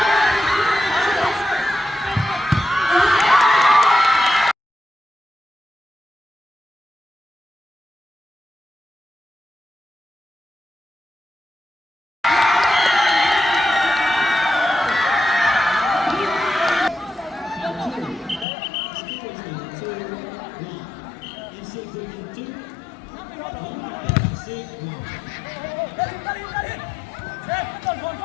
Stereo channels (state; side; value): drops out; right; at 18.4 s